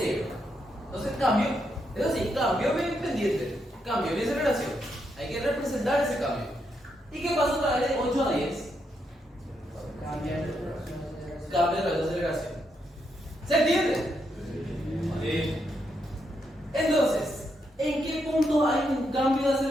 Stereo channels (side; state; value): both; normal; correlation 0.80